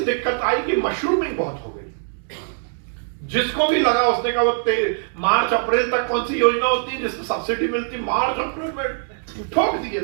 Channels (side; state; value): left; silent; digital silence